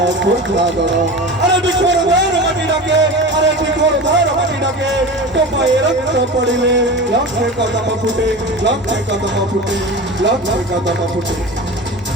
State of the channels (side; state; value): both; normal; correlation 0.30